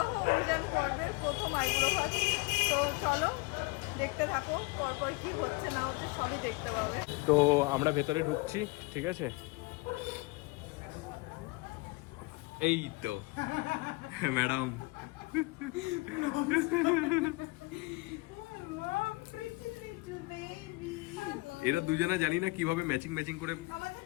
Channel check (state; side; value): quieter; right; 24.7 dB